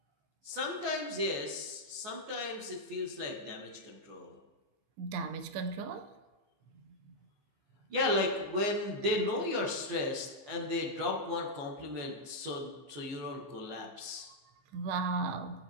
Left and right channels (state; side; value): late; left; 14 ms